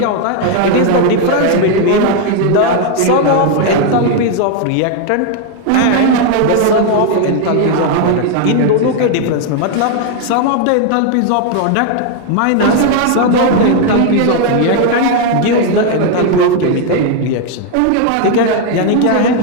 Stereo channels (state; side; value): different; both; correlation 0.01